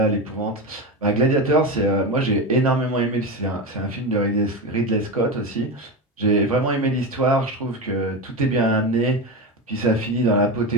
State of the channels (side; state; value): both; normal; correlation 0.19